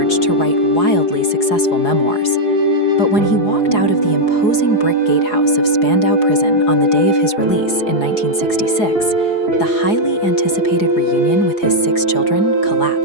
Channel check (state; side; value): late; right; 4.8 ms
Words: to write wildly successful memoirs. But when he walked out of the imposing brick gatehouse of Spandau prison on the day of his release in 1966, the highly anticipated reunion with his 6 children